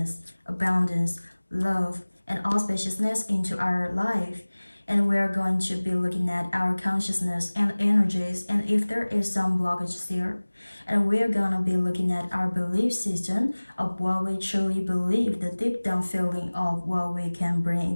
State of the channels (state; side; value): inverted; both; correlation -1.00